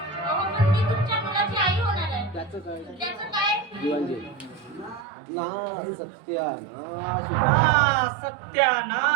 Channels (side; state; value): left; drops out; at 5.1 s